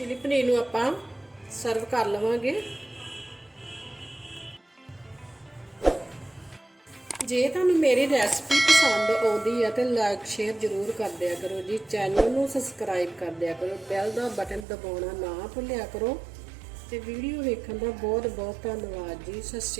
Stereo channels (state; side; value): drops out; left; at 14.7 s